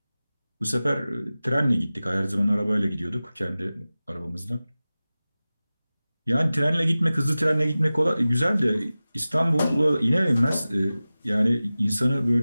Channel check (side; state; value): both; inverted; correlation -0.96